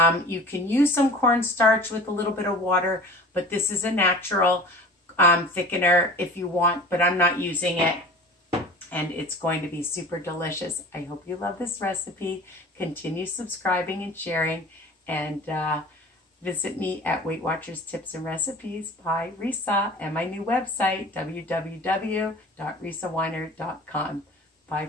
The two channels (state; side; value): normal; both; correlation 0.40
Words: You can use some cornstarch with a little bit of water, but this is a natural thickener if you want, but I'm not using it. And it's going to be super delicious. I hope you love this recipe. Continue subscribing and sharing, and visit me at Weight Watchers Tips and Recipes by Risa, and my new website, www.risaweiner.com. Bye